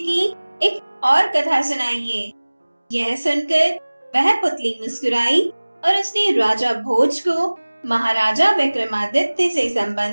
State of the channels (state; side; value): inverted; both; correlation -1.00